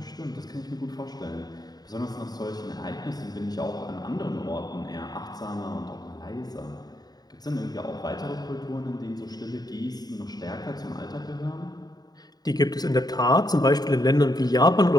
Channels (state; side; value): late; right; 0.19 ms